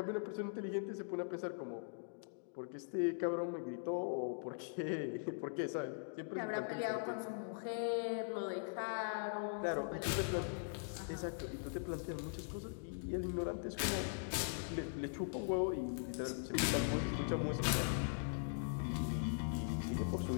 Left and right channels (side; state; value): right; silent; digital silence